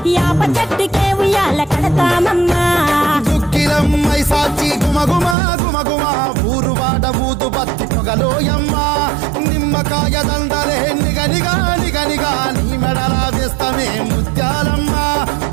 యాప చెట్టుకే ఉయ్యాల కడతామమ్మా దుక్కిలమ్మై సాచి గుమగుమ గుమగుమ ఊరు వాడ ఊదు బత్తి పొగలోయమ్మ నిమ్మకాయ దండలే నిగనిగా నిగనిగా నీ మెడల వేస్తమే ముత్యాలమ్మ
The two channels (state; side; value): drops out; left; at 5.4 s